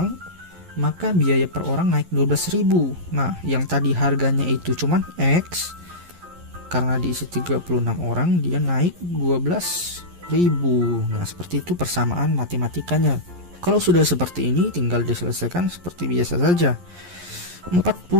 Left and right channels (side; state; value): left; late; 11 ms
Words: maka biaya per orang naik 12.000. Nah, yang tadi harganya itu cuman X, karena diisi 36 orang dia naik 12.000. Nah, seperti itu persamaan matematikanya. Kalau sudah seperti ini tinggal diselesaikan seperti biasa saja.